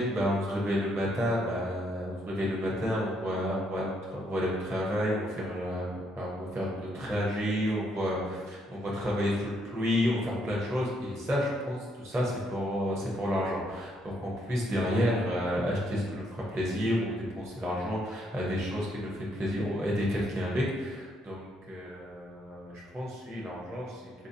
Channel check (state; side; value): normal; both; correlation 0.73